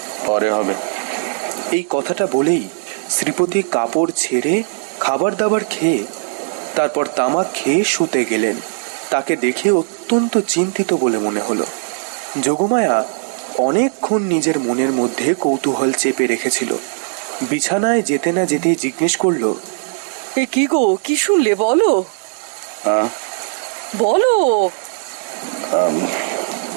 পরে হবে। এই কথাটা বলেই শ্রীপতি কাপড় ছেড়ে খাবার দাবার খেয়ে তারপর তামাক খেয়ে শুতে গেলেন। তাকে দেখে অত্যন্ত চিন্তিত বলে মনে হলো। যোগমায়া অনেকক্ষণ নিজের মনের মধ্যে কৌতূহল চেপে রেখেছিল। বিছানায় যেতে না যেতে জিজ্ঞেস করল, এ কি গো, কি শুনলে বলো? বলো।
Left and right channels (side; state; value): left; silent; digital silence